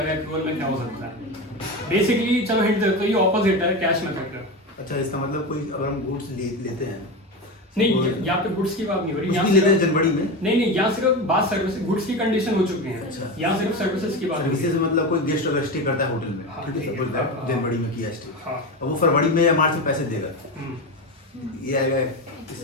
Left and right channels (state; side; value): normal; both; correlation 0.21